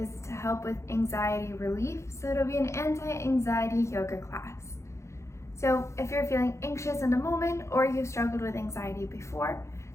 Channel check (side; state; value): right; late; 0.14 ms